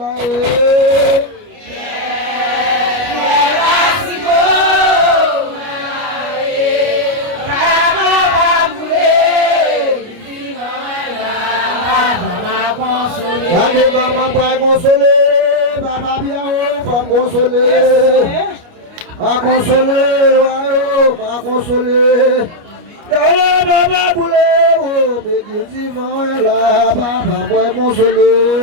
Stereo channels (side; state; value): left; late; 29 ms